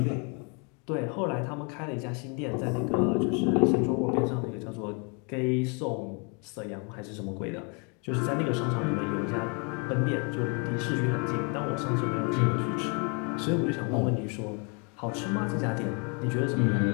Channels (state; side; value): quieter; right; 34.9 dB